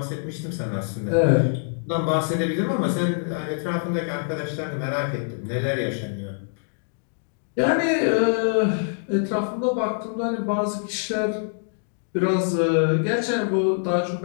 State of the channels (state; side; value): silent; right; digital silence